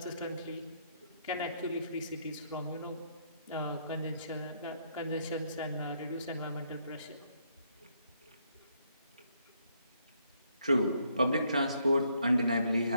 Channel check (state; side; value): inverted; both; correlation -0.72